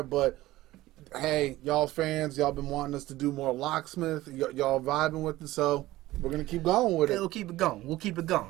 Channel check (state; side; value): quieter; left; 16.9 dB